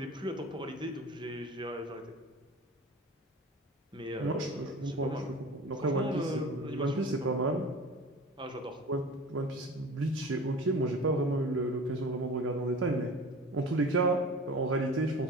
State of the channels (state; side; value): normal; both; correlation 0.38